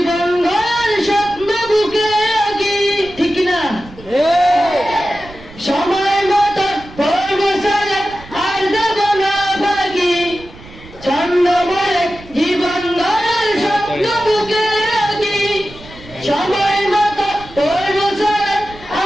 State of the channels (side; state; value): right; noise; rumble, 19 dB below the sound